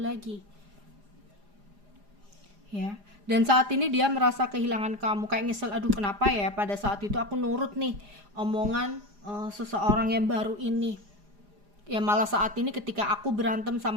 Ya. Dan saat ini dia merasa kehilangan kamu, kayak nyesel, aduh kenapa ya pada saat itu aku nurut nih omongan seseorang yang baru ini. Ya malah saat ini ketika aku berantem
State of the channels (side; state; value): left; late; 4.9 ms